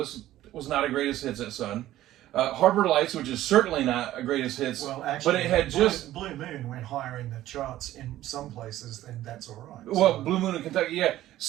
It was not a greatest hits at Sun. Harbor Lights, which is certainly not a greatest hits. Well, actually, but it had Blue Moon went higher in the charts in some places, then that's all right. Well, Blue Moon of Kentucky, yeah.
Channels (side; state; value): left; quieter; 14.2 dB